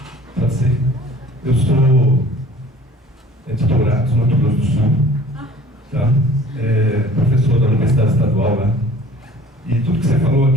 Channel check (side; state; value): both; normal; correlation 0.49